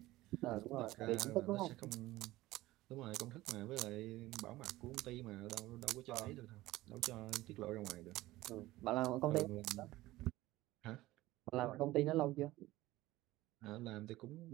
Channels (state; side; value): quieter; left; 17.5 dB